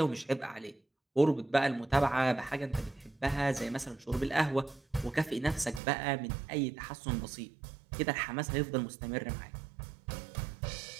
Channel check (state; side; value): drops out; left; at 5.8 s